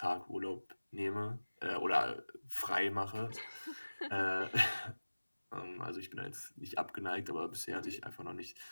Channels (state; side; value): inverted; both; correlation -1.00